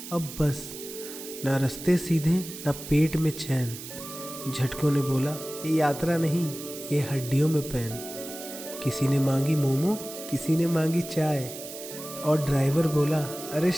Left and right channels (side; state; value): right; noise; hiss, 11 dB below the sound